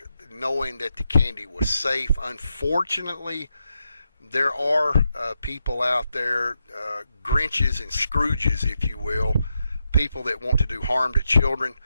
knowing that the candy was safe. Unfortunately, there are people out there, Grinches and Scrooges, if you will, people that want to do harm to children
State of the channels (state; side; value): inverted; both; correlation -0.85